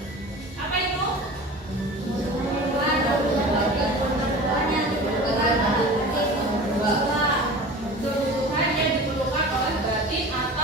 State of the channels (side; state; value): both; normal; correlation 0.37